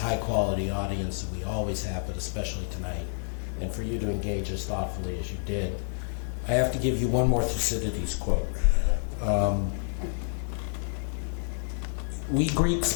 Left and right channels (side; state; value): right; silent; 59 dB below the other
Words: quality audience that we always have, but especially tonight, and for you to engage as thoughtfully as you did. I have to give you one more Thucydides quote. We Greeks